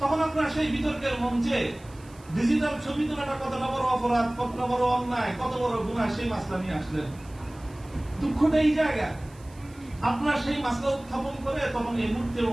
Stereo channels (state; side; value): noise; right; hiss, 26 dB below the sound